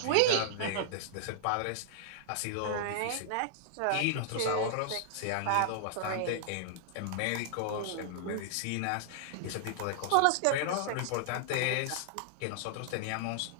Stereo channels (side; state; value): both; different; correlation -0.01